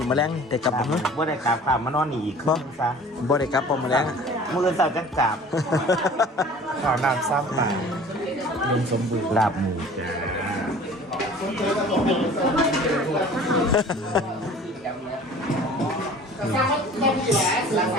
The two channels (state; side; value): normal; both; correlation 0.45